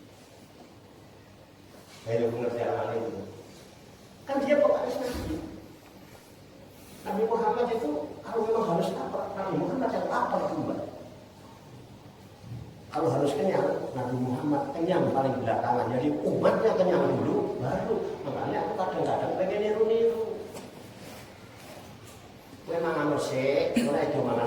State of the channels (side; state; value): both; identical; correlation 1.00